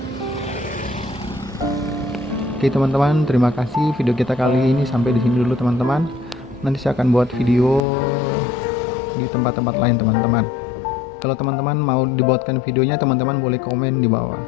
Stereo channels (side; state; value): right; drops out; at 7.8 s